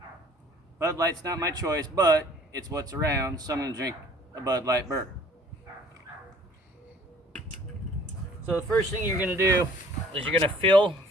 Bud Light's not my choice, but it's what's around, so I'm going to drink a Bud Light burr. So the first thing you're going to do is you're going to feel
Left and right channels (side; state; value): both; normal; correlation 0.54